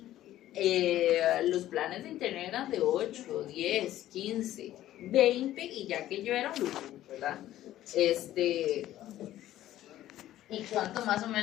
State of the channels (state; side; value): quieter; right; 13.6 dB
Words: los planes de internet eran de 8, 10, 15, 20 y ya que yo era un lujo, ¿verdad? ¿Y cuánto más o